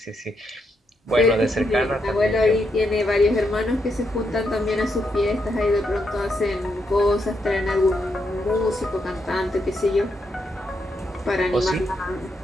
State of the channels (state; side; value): normal; both; correlation 0.80